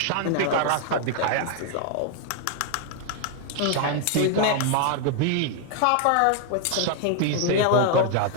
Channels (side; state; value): both; different; correlation 0.00